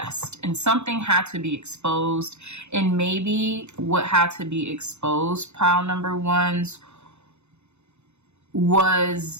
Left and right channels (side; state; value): left; late; 0.82 ms